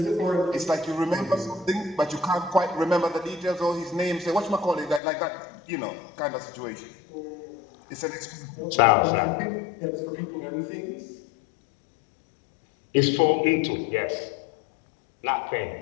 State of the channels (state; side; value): drops out; right; at 5.0 s